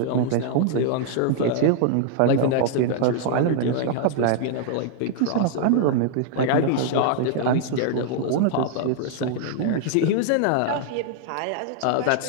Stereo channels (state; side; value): different; both; correlation 0.00